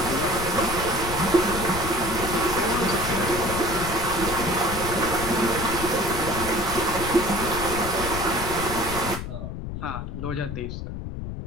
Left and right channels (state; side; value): noise; left; rumble, 6 dB below the sound